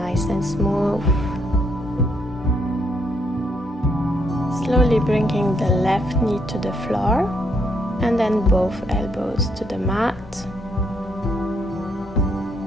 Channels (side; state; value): both; normal; correlation 0.74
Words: and smooth. Slowly bringing the left knee to the floor, and then both elbows to the mat